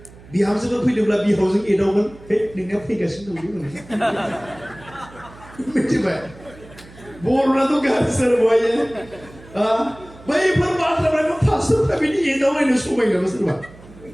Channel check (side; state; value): right; noise; hum, 21 dB below the sound